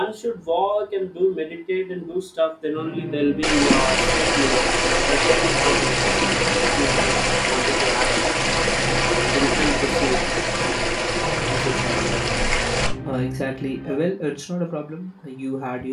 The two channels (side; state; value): both; identical; correlation 1.00